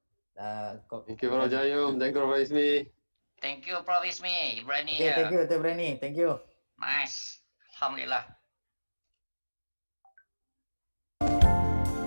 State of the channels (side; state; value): both; inverted; correlation -1.00